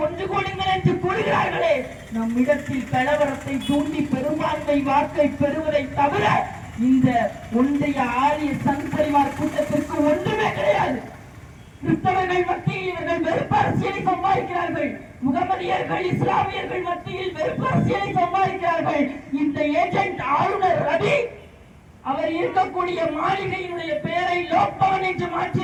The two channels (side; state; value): both; identical; correlation 1.00